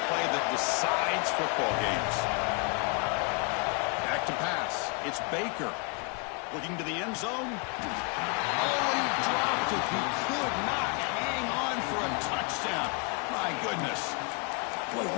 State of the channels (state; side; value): quieter; right; 35.0 dB